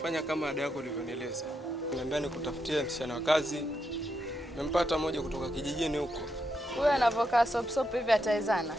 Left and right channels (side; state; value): both; normal; correlation 0.82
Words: kama ada yako ulivyonieleza. Niambia nikutafutie msichana wa kazi. Nimempata mmoja kutoka kijijini huko. Huyo anavokaa sop hivi atawezana?